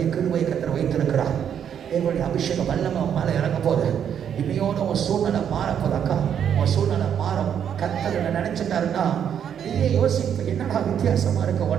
கிருபையை கர்த்தர் வைத்திருக்கிறார். தேவனுடைய அபிஷேகம் வல்லமை உன் மேல இறங்க போது. இன்னையோட உன் சூழ்நிலை மாறப்போது. அக்கா, உன் சூழ்நிலை மாறும். கர்த்தர் நினைச்சிட்டாருன்னா நீயே யோசிப்பு, என்னடா வித்தியாசமா இருக்க,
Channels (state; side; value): quieter; left; 8.7 dB